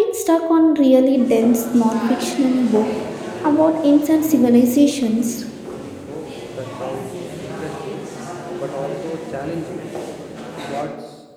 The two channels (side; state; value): both; identical; correlation 1.00